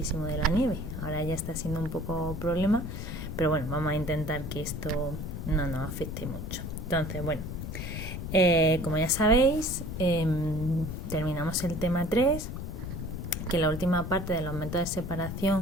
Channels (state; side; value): noise; left; rumble, 6 dB below the sound